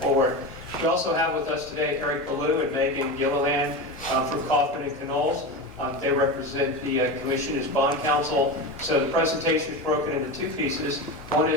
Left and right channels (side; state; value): both; normal; correlation 0.23